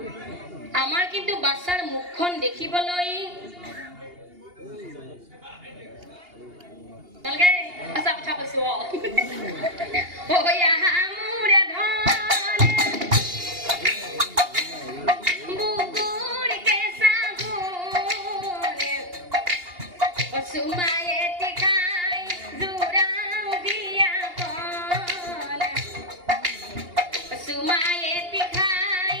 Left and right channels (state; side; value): late; left; 2.8 ms